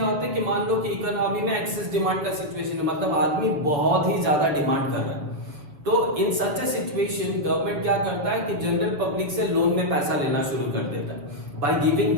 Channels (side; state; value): left; late; 6.8 ms